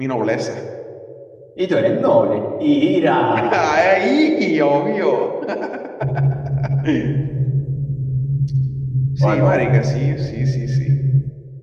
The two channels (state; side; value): identical; both; correlation 1.00